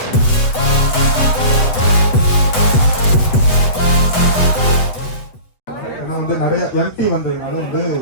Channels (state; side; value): late; right; 8.0 ms